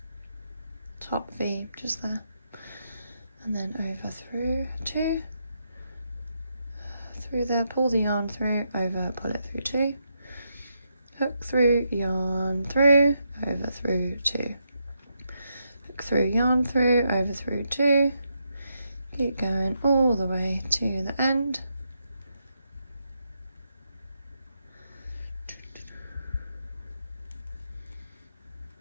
V just there, and then over through 2, through there, pull the yarn through, over, pull it through 2, hook through, yarn through, over through 2, hook through, yarn through, over through 2, keep going all the way to the end.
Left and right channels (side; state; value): both; inverted; correlation -0.82